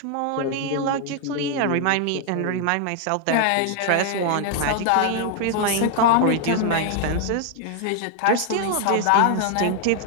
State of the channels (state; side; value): different; both; correlation 0.00